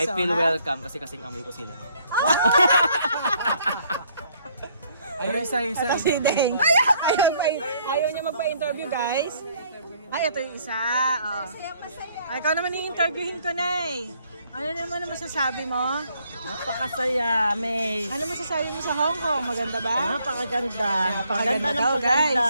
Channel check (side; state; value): both; inverted; correlation -0.66